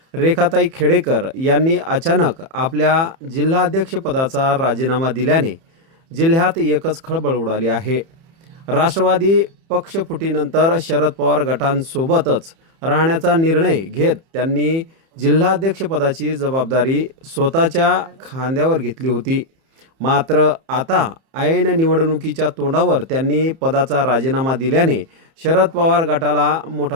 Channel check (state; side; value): late; left; 30 ms